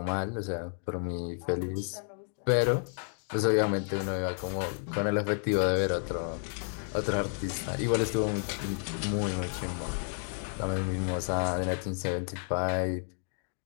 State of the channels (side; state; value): right; silent; 57 dB below the other